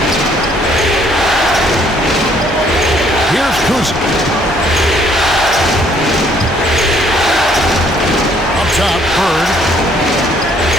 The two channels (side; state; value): both; normal; correlation 0.64